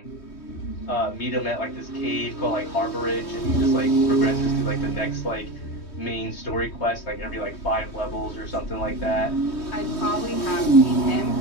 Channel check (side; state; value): right; late; 3.2 ms